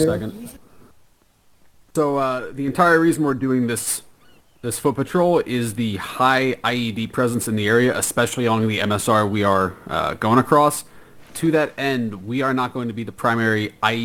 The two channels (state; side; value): identical; both; correlation 1.00